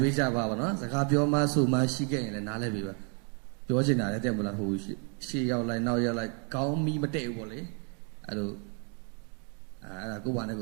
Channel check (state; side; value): quieter; left; 39.9 dB